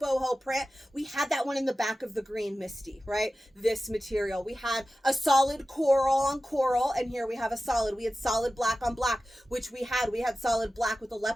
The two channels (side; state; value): both; normal; correlation 0.95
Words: print. We had that one in the back of the green Misty, right? This material. We had a solid coral on coral, and here we have a solid. We had solid black on black, which we had solid black with a